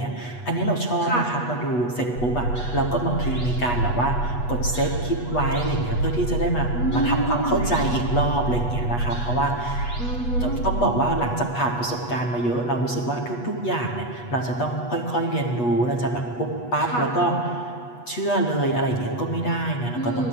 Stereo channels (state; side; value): late; right; 8.2 ms